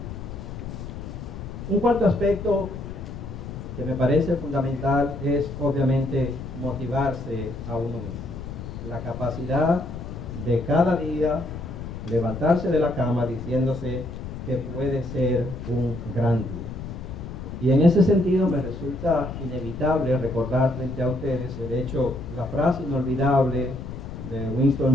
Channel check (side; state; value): left; noise; rumble, 9 dB below the sound